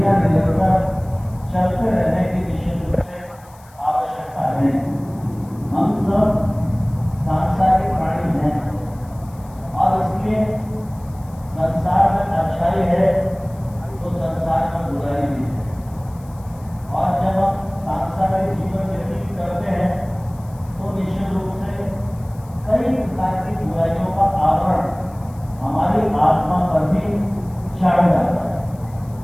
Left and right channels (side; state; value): left; noise; hiss, 27 dB below the sound